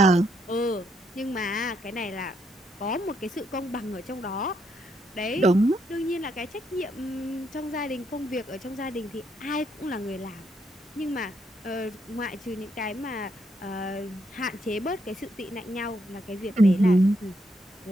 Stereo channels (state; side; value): normal; both; correlation 0.76